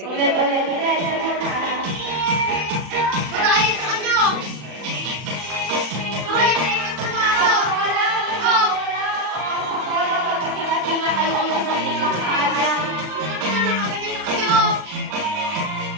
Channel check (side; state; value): left; late; 40 ms